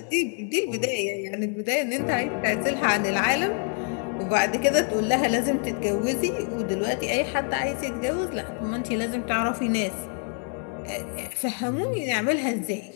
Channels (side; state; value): right; quieter; 39.6 dB